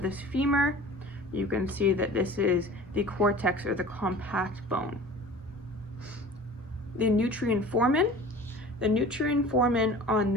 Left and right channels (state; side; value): normal; both; correlation 0.42